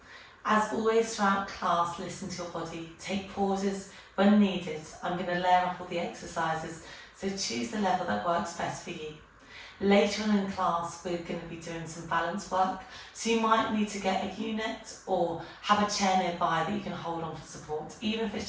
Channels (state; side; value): identical; both; correlation 1.00